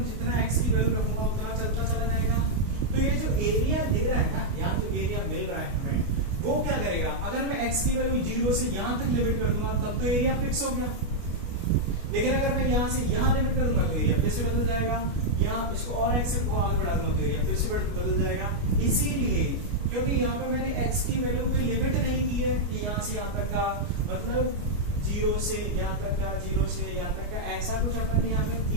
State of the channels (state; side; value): late; left; 29 ms